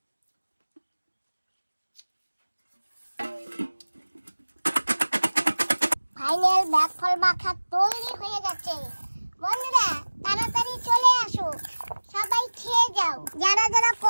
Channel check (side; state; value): both; inverted; correlation -1.00